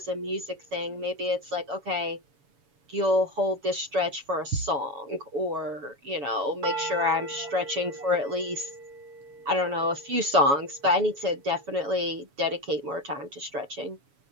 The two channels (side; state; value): left; late; 7.1 ms